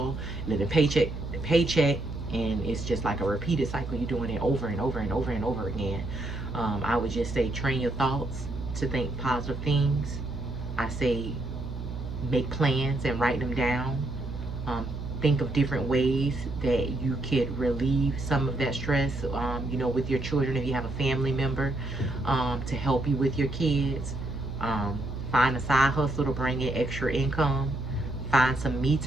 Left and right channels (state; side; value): noise; right; hum, 7 dB below the sound